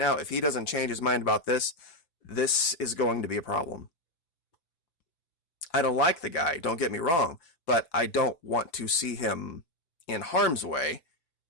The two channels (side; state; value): right; late; 5.9 ms